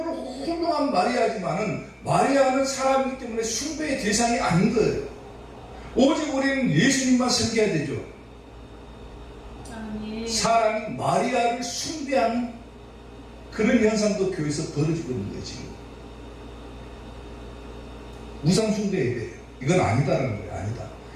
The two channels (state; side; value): identical; both; correlation 1.00